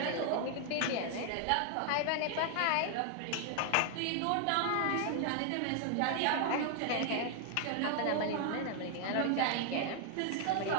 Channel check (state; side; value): different; both; correlation 0.00